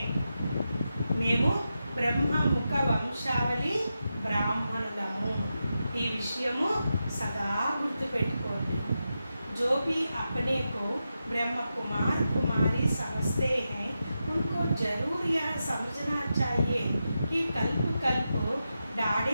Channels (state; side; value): inverted; both; correlation -0.89